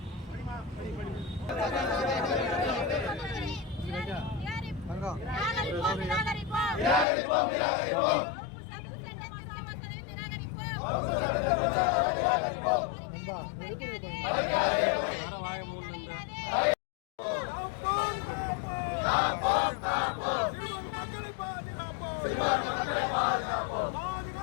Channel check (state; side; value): drops out; right; at 7.1 s